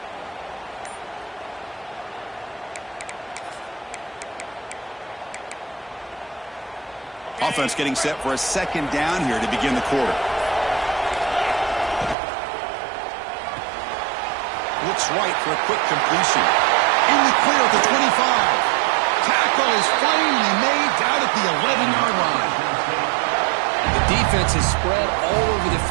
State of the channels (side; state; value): left; drops out; at 12.2 s